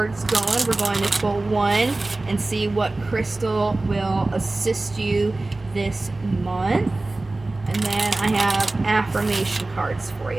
going. We're going to pull one and see what crystal will assist you this month. And then I have affirmation cards for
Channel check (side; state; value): left; quieter; 3.0 dB